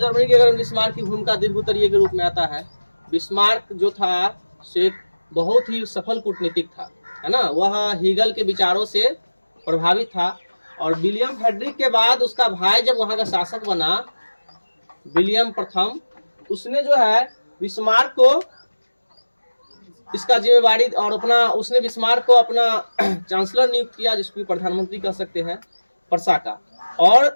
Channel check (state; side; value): inverted; both; correlation -1.00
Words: के एकीकरण बिस्मार्क की भूमिका दीर्घ उत्तरीय के रूप में आता है। बिस्मार्क जो था से बहुत ही सफल कूटनीतिक था, है ना। वह हीगल के विचारों से प्रभावित था और विलियम फ्रेडरिक के बाद उसका भाई जब वहां का शासक बना, विलियम प्रथम, उसने जो है बिस्मार्क को इसका जिम्मेवारी और अपना उसने बिस्मार्क को अपना चांसलर नियुक्त किया, जिसको प्रधानमंत्री कह सकते हैं, पर्सा का।